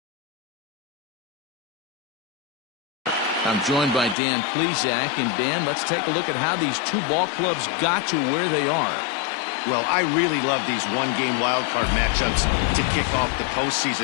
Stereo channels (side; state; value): right; drops out; at 4.2 s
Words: I'm joined by Dan Plesac. And Dan, let's take a look at how these two ball clubs got to where they are. Well, I really love these one-game wild card matchups to kick off the